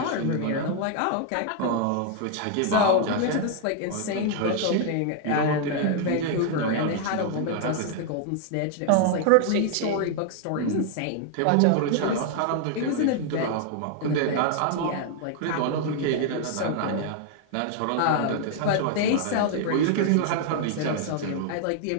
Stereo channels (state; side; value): different; both; correlation 0.00